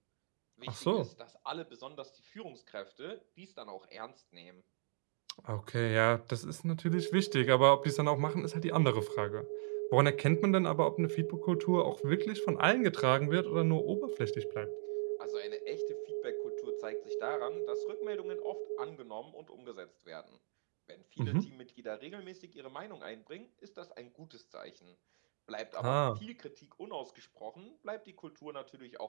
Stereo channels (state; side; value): silent; left; digital silence